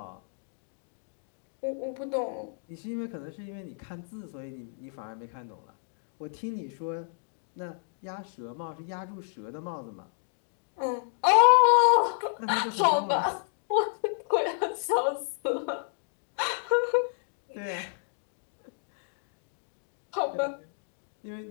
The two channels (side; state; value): right; silent; digital silence